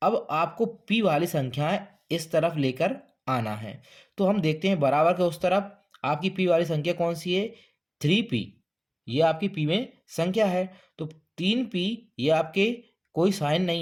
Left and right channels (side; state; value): both; identical; correlation 1.00